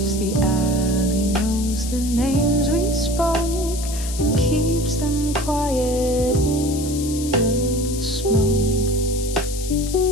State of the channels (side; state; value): left; noise; hiss, 10 dB below the sound